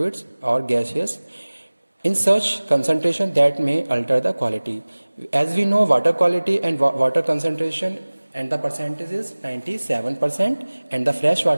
or gaseous in such concentration that may alter the quality. As we know, water quality and water concentration and the percentage is 97% and the fresh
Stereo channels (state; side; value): inverted; both; correlation -1.00